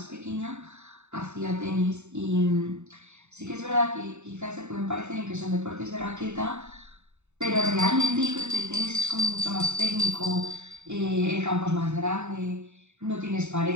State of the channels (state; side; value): late; left; 0.82 ms